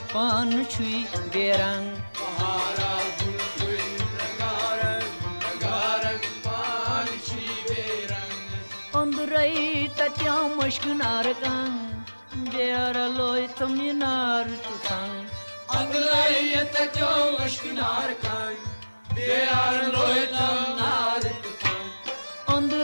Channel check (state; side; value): inverted; both; correlation -1.00